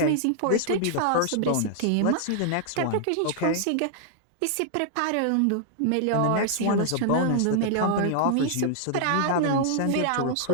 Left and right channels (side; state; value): both; different; correlation -0.01